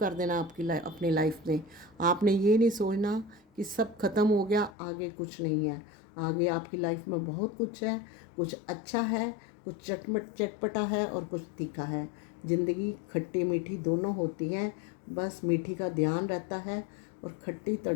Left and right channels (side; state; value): right; drops out; at 4.8 s